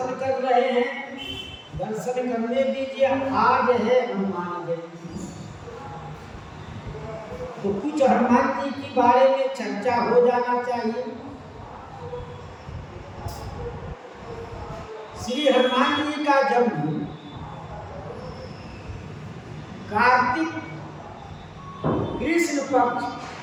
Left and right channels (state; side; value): identical; both; correlation 1.00